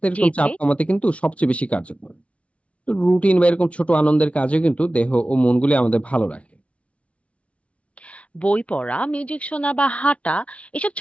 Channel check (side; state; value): right; late; 0.063 ms